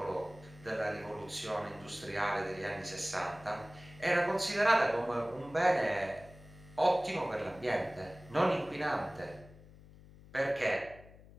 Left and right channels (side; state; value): left; noise; hum, 21 dB below the sound